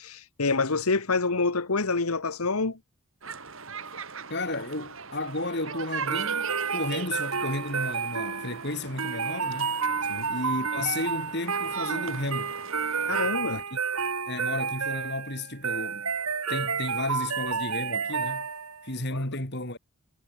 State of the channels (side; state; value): both; normal; correlation -0.08